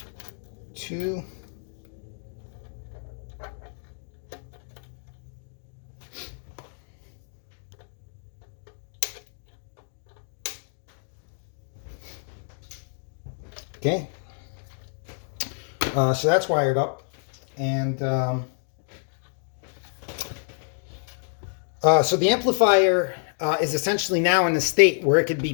2. Okay, so that's wired up, and so the amplifier is essentially now in a state where it could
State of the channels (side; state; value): right; silent; digital silence